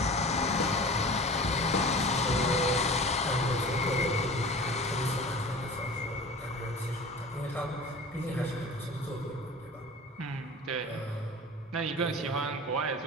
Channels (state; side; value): normal; both; correlation 0.38